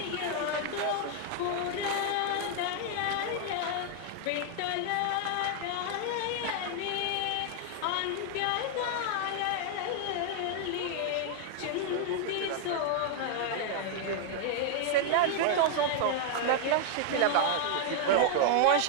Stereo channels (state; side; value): different; both; correlation 0.00